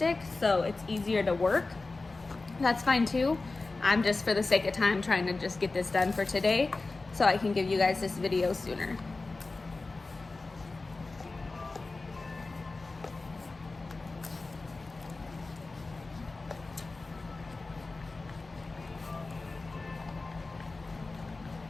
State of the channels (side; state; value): right; quieter; 3.5 dB